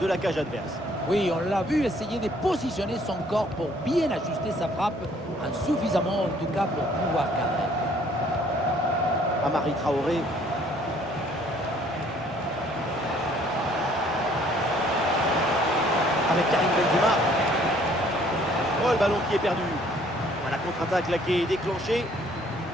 de la cage adverse. Oui, on l'a vu essayer de positionner son corps pour bien ajuster sa frappe, insuffisamment en tout cas pour pouvoir cadrer. Amari Traoré. Avec Karim Benzema. Oh, le ballon qui est perdu. La contre-attaque là qui est déclenchée.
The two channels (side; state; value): both; normal; correlation 0.60